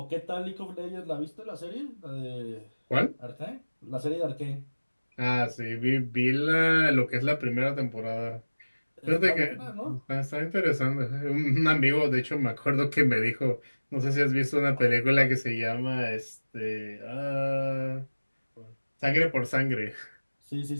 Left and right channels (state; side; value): inverted; both; correlation -1.00